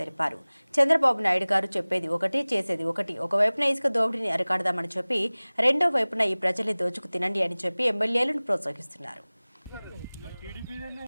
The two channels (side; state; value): both; inverted; correlation -1.00